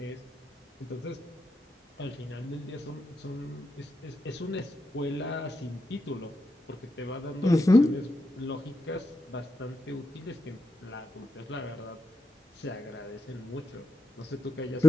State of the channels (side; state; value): both; normal; correlation 0.85